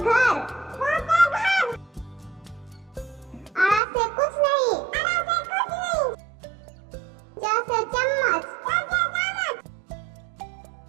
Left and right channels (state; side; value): drops out; left; at 3.8 s